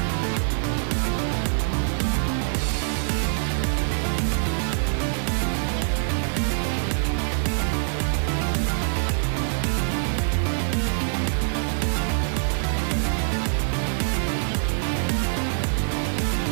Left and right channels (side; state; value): left; silent; digital silence